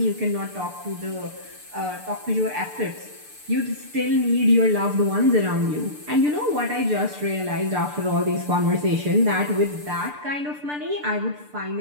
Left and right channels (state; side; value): late; left; 6.8 ms